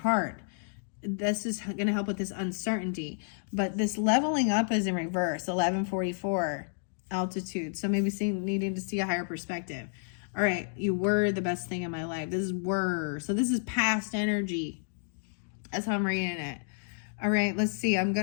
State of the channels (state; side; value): silent; right; digital silence